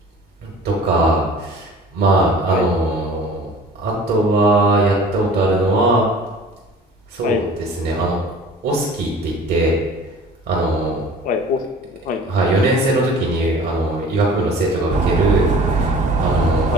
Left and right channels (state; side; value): normal; both; correlation 0.45